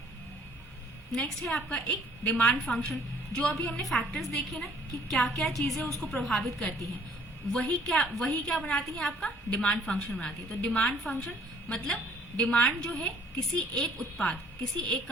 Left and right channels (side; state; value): both; normal; correlation 0.58